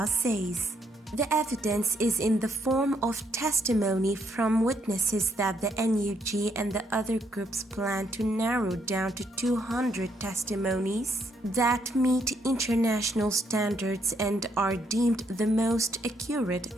says. The evidence is in the form of testimony from witnesses that the NUG and the other groups plan to narrow down to 200 testimonies that meet international standards and are deemed the most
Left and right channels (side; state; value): both; normal; correlation 0.73